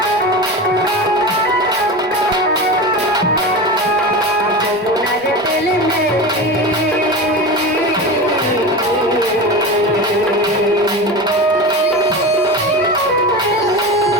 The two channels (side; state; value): left; noise; rumble, 29 dB below the sound